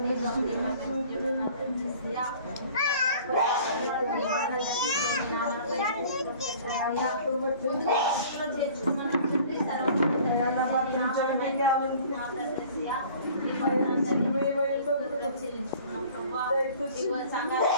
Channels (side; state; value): both; inverted; correlation -0.48